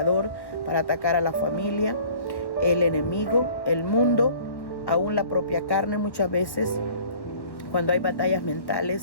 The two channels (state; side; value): late; right; 1.1 ms